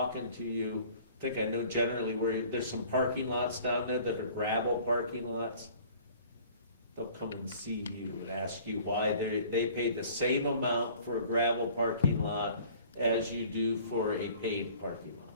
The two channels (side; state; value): both; inverted; correlation -0.51